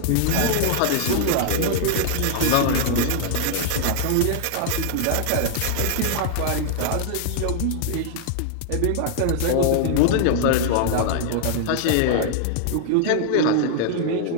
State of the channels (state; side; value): different; both; correlation -0.01